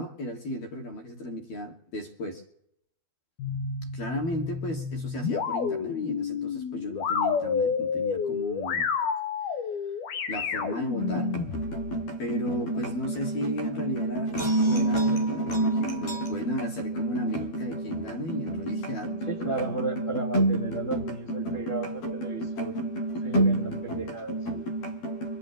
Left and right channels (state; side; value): late; right; 12 ms